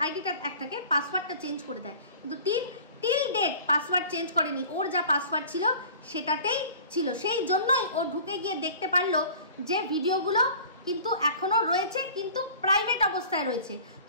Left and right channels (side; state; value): both; inverted; correlation -0.44